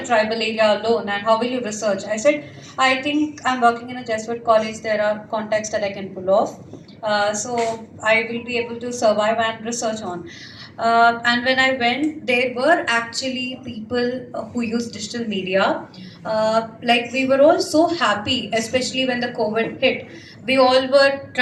tribal area alone, and how will you research? I said, I think I'm working in a Jesuit college, there are contacts that I can pull off. So I will be able to survive and research on. And when I went, there were actually people who use digital media. Like we were all so happy, especially when the COVID hit. We all were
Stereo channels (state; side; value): identical; both; correlation 1.00